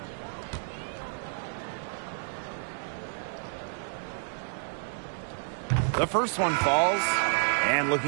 The first one falls. And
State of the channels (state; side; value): silent; left; digital silence